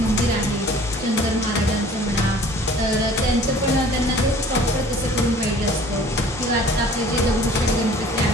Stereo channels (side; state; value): both; normal; correlation 0.50